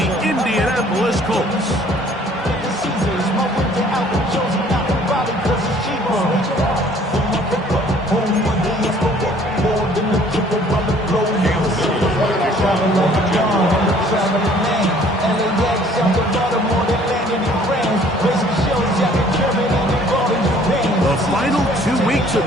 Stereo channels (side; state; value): both; normal; correlation 0.56